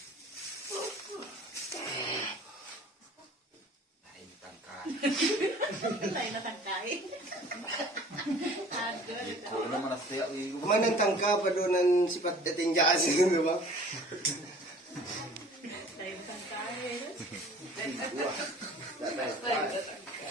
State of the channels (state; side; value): normal; both; correlation 0.49